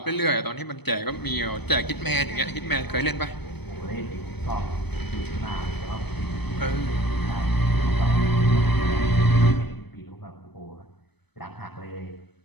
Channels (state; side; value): late; right; 0.98 ms